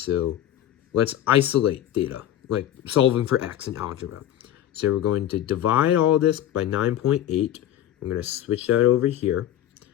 let's isolate theta, like solving for x in algebra. So we're going to divide all this by 9.8. I'm going to switch that over here.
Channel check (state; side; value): quieter; right; 11.8 dB